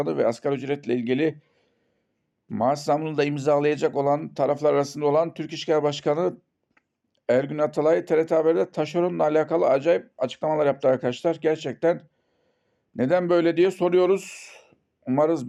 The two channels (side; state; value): both; identical; correlation 1.00